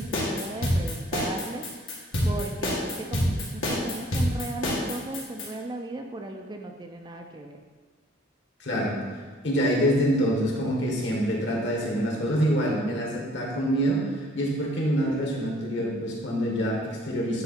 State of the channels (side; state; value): both; normal; correlation 0.58